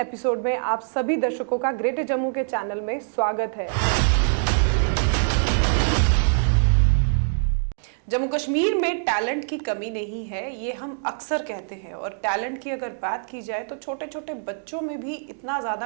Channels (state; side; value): silent; left; digital silence